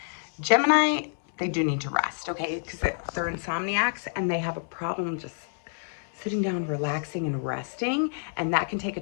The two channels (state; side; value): silent; right; digital silence